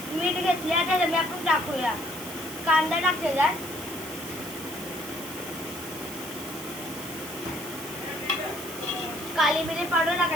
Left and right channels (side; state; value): right; noise; hiss, 11 dB below the sound